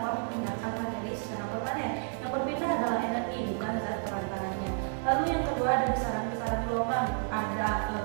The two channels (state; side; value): silent; left; 57 dB below the other